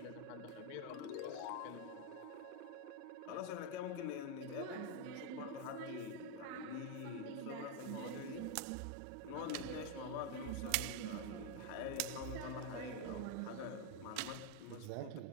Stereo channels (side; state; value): both; different; correlation 0.01